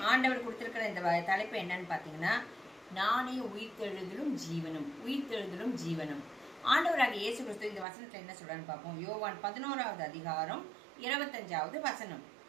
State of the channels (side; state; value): left; drops out; at 7.9 s